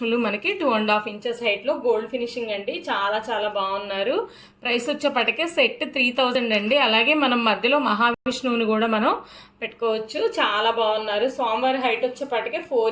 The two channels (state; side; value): identical; both; correlation 1.00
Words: మనకి 2.5 ఇంచెస్ హైట్లో గోల్డ్ ఫినిషింగ్ అండి. చాలా చాలా బాగున్నారు. ప్రైస్ వచ్చేప్పటికే సెట్ 3000 అండి. అలాగే మనం మధ్యలో మహావిష్ణువుని కూడా మనం పెట్టుకోవచ్చు. చాలా బాగున్నారు. స్వామివారి హైట్ వచ్చేప్పటికే 4